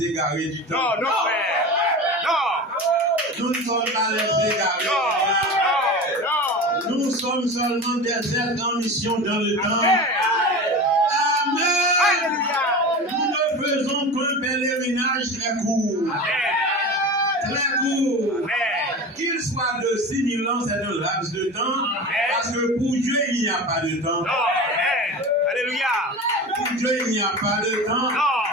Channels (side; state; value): both; normal; correlation 0.30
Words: égarés du temps. Non, non, frère. Non. Nous ne sommes pas les égarés. Non. Nous sommes seulement des êtres en mission dans le temps. Amen. Alléluia. Nous ne faisons qu'un pèlerinage très court. Très court. Qu'il soit de 6000 ans, c'est un laps de temps. Parce que pour Dieu, il n'y a pas de temps. Alléluia. Pour Dieu, il n'y a pas de temps.